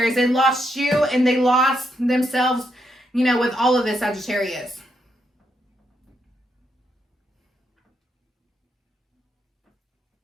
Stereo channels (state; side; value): normal; both; correlation 0.79